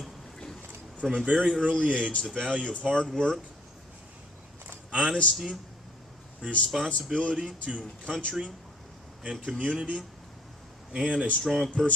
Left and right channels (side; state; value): both; normal; correlation 0.60